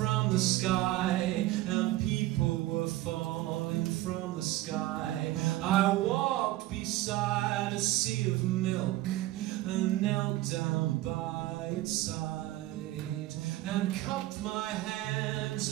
the sky, and people were falling from the sky. I walked beside a sea of milk and knelt down by its side, and cupped my hands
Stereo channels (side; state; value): left; quieter; 16.2 dB